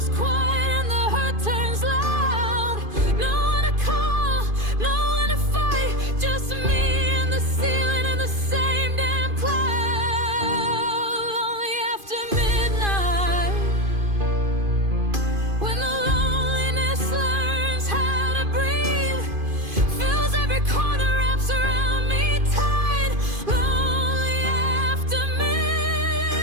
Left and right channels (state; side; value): late; left; 2.5 ms